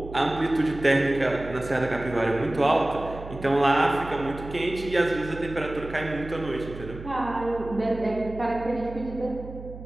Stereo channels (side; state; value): right; noise; hum, 13 dB below the sound